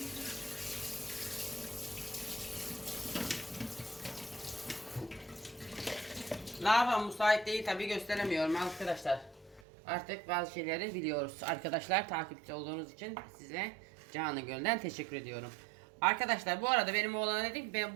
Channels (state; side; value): drops out; left; at 9.7 s